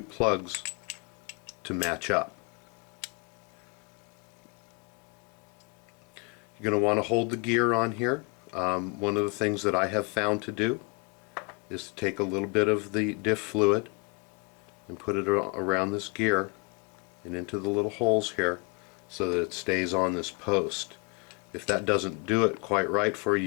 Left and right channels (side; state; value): right; quieter; 31.1 dB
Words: plugs to match up. You're going to want to hold the gear on here. One of the things that I have found to do is to take a little bit of the diff fluid and put it around this gear and into the little holes here so that it stays on this post. If that doesn't do it quite right for you,